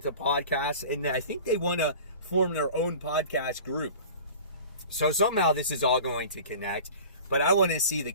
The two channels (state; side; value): inverted; both; correlation -0.40